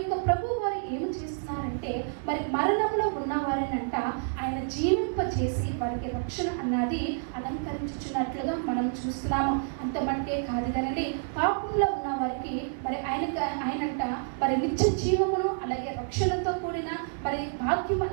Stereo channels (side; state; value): left; silent; 59 dB below the other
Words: ప్రభు వారు ఏమి చేస్తున్నారంటే మరి మరణంలో ఉన్న వారిని అంట ఆయన జీవింపచేసి వారికి రక్షణ అన్నది అలంకరించుచున్నట్లుగా మనం చూస్తున్నాము. అంత మటుకే కాదు కదండి, పాపంలో ఉన్న వారికి మరి ఆయనంట మరి నిత్య జీవమును అలాగే రక్షణతో కూడిన మరి భాగ్యం